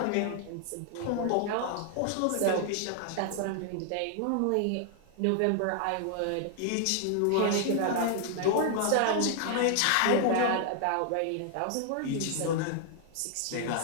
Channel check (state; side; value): different; both; correlation 0.00